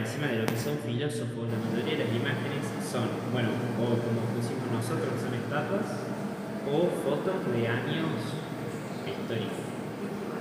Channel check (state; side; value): identical; both; correlation 1.00